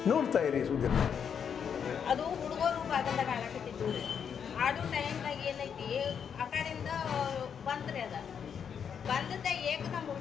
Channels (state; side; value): quieter; right; 7.5 dB